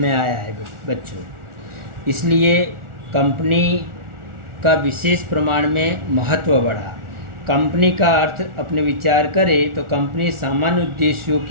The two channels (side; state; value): left; late; 1.4 ms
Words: आया है बच्चों। इसलिए कंपनी का विशेष प्रमाण में महत्व बढ़ा। कंपनी का अर्थ अपने विचार करें तो कंपनी सामान्य उद्देश्यों